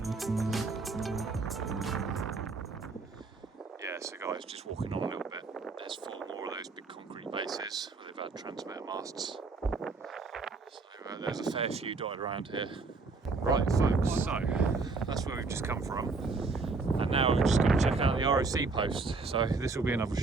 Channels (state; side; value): quieter; left; 4.0 dB